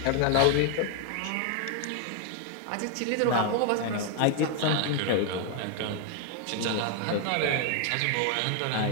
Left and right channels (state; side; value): different; both; correlation 0.00